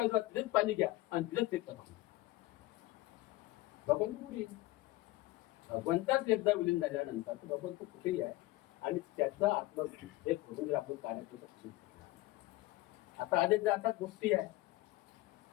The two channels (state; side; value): quieter; right; 18.0 dB